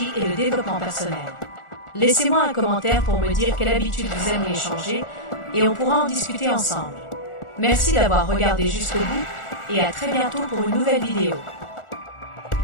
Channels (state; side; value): late; right; 1.4 ms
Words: et le développement personnel. Laissez-moi un commentaire pour me dire quelle habitude vous aimeriez changer et on pourra en discuter ensemble. Merci d'avoir regardé jusqu'au bout et à très bientôt pour une nouvelle vidéo.